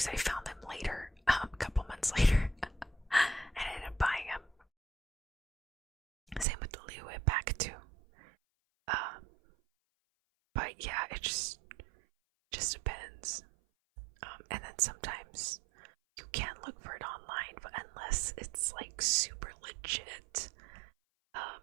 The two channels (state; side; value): drops out; left; at 6.5 s